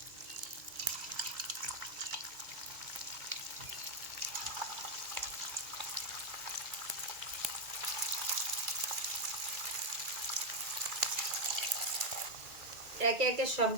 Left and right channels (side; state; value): left; late; 2.3 ms